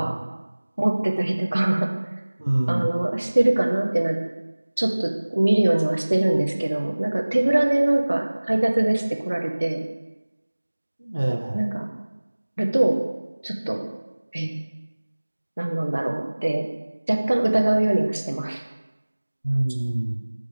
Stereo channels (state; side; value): inverted; both; correlation -1.00